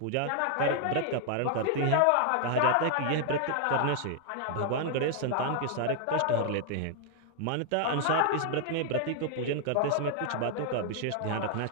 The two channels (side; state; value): both; different; correlation 0.00